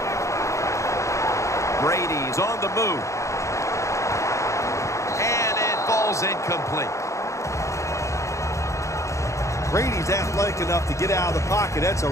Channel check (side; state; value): right; late; 0.15 ms